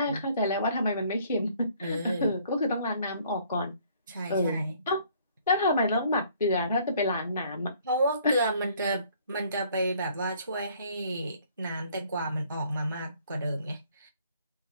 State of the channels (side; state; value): both; inverted; correlation -0.60